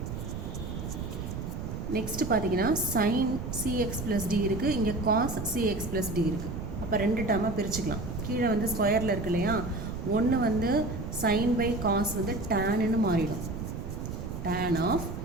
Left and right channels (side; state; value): right; noise; rumble, 6 dB below the sound